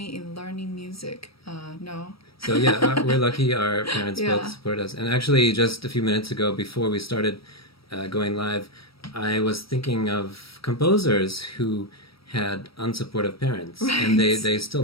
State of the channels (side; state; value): right; late; 0.75 ms